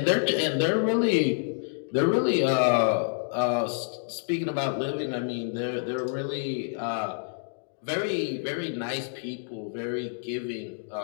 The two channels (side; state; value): right; silent; digital silence